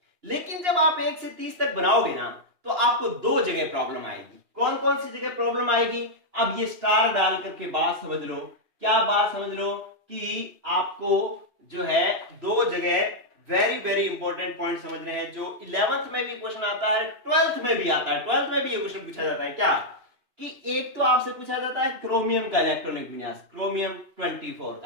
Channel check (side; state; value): left; late; 2.9 ms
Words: लेकिन जब आप 1 से 30 तक बनाओगे ना तो आपको 2 जगह प्रॉब्लम आएगी। कौन कौन सी जगह प्रॉब्लम आएगी? अब ये स्टार डाल करके बात समझ लो। क्या बात समझ लो कि आपको जो है 2 जगह वेरी वेरी इंपॉर्टेंट पॉइंट समझने हैं, जो 11th में भी क्वेश्चन आता है, 12th में भी आता है। 12th में भी ये क्वेश्चन पूछा जाता है क्या कि एक तो आपसे पूछा जाता है क्रोमियम का इलेक्ट्रॉनिक विन्यास, क्रोमियम 24